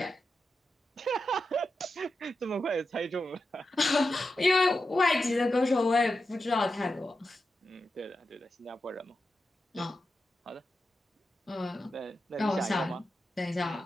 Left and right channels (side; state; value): both; normal; correlation 0.89